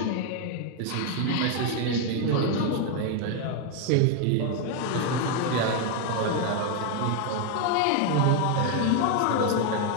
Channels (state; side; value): different; both; correlation 0.01